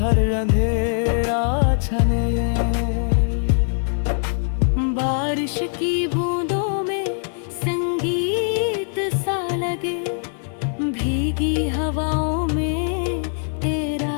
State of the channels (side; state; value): right; silent; 61 dB below the other